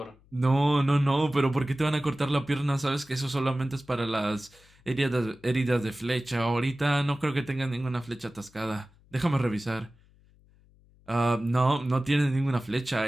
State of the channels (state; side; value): noise; left; hum, 29 dB below the sound